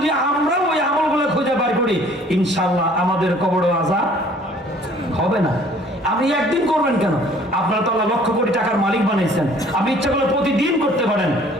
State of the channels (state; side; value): normal; both; correlation 0.55